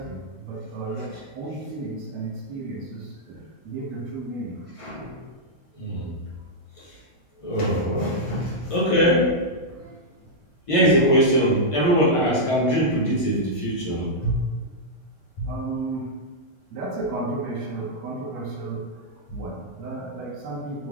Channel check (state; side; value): late; right; 1.5 ms